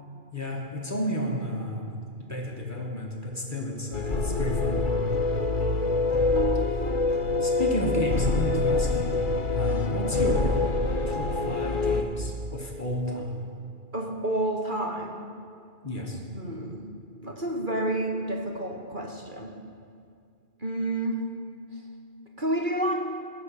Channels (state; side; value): late; left; 2.4 ms